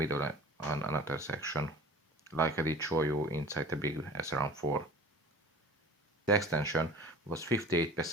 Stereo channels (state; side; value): normal; both; correlation 0.42